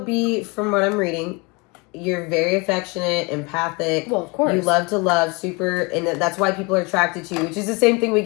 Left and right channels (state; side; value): quieter; right; 27.9 dB